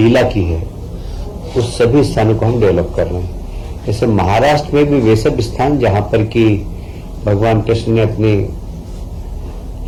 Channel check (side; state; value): both; identical; correlation 1.00